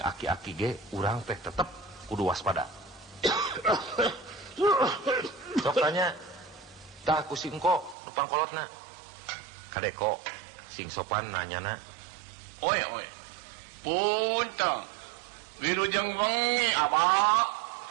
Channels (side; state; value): left; drops out; at 8.0 s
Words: aki-aki ge urang teh tetep kudu waspada. Sok tanya. Tah ku si engko nu pangkolotna. Kadek kok sing sopan nanyana. Oi. Punten. Wilujeng wengi abah.